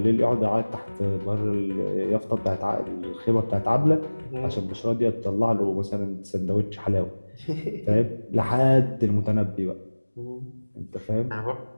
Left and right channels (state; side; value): inverted; both; correlation -1.00